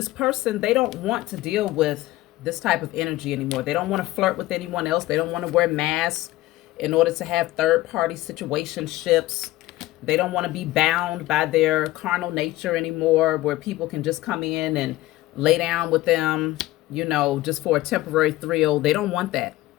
person, they don't want to deal with this type of energy anymore. They don't want to flirt with anyone else. They don't want to wear masks in order to have third-party situationships. They don't want to be bound by their carnal nature anymore, where people can just come in and lay down with them, you know, just for a temporary thrill. They don't want that.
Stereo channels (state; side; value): quieter; right; 17.2 dB